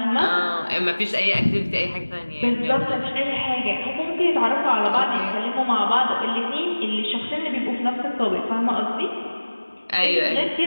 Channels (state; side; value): inverted; both; correlation -1.00